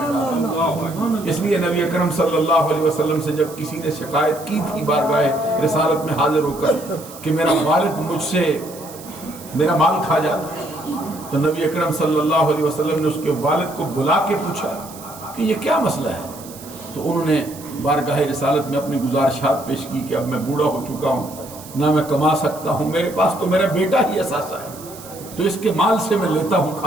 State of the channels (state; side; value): noise; right; hiss, 17 dB below the sound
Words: ڈالا۔ اس لیے نبی اکرم صلی اللہ علیہ وسلم سے جب کسی نے شکایت کی تھی بارگاہ رسالت میں حاضر ہو کر کہ میرا والد مجھ سے میرا مال کھا جاتا، تو نبی اکرم صلی اللہ علیہ وسلم نے اس کے والد کو بلا کے پوچھا کہ یہ کیا مسئلہ ہے؟ تو انہوں نے بارگاہ رسالت میں اپنی گزارشات پیش کی کہ اب میں بوڑھا ہو چکا ہوں، نہ میں کما سکتا ہوں، میرے پاس تو میرا بیٹا ہی اثاثہ ہے، تو اس کے مال سے میں لیتا ہوں